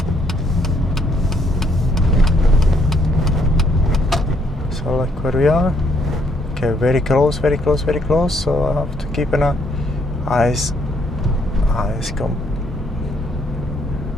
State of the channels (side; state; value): both; normal; correlation 0.70